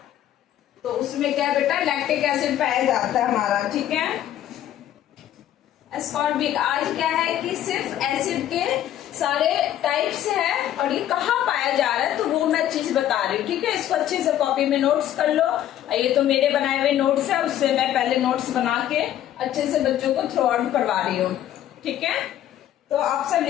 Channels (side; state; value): right; quieter; 11.8 dB